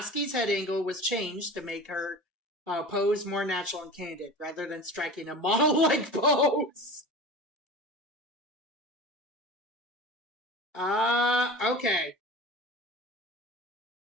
head angle was changed to make her pose more natural and candid, rather than striking a model-like pose. Okay.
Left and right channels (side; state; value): both; normal; correlation 0.35